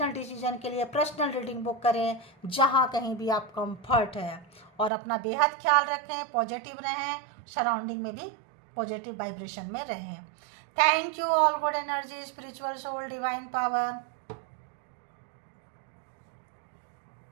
डिसीजन के लिए पर्सनल रीडिंग बुक करें जहाँ कहीं भी आप कंफर्ट है, और अपना बेहद ख्याल रखें, पॉजिटिव रहें, सराउंडिंग में भी पॉजिटिव वाइब्रेशन में रहें। Thank you all good energy, spiritual soul, divine power.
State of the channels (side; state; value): left; drops out; at 4.9 s